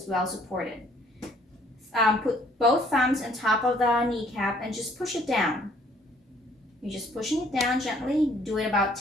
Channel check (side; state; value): both; normal; correlation 0.61